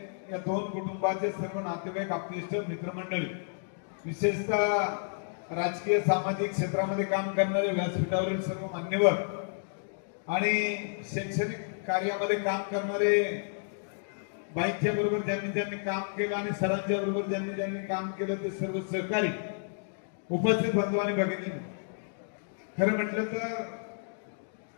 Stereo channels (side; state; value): right; silent; digital silence